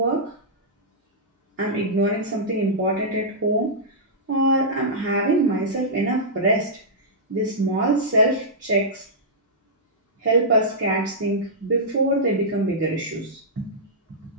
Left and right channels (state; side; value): normal; both; correlation -0.13